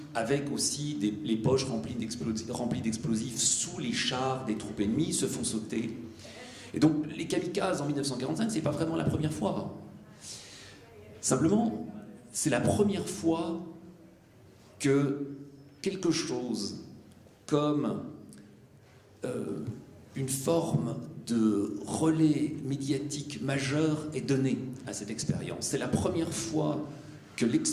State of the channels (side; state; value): both; identical; correlation 1.00